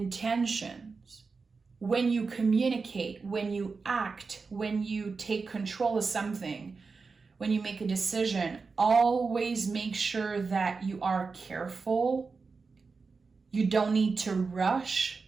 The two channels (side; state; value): left; quieter; 4.6 dB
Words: When you communicate, when you act, when you take control of something, when you make a decision, always make sure that you are careful. You don't need to rush